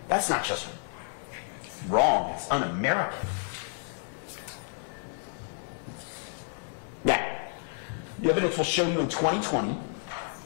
That's not just wrong, it's un-American. Now, the evidence will show you in 2020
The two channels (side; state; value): right; silent; 57 dB below the other